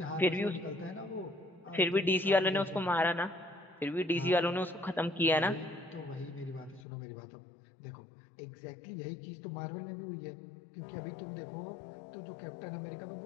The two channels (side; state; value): right; drops out; at 6.9 s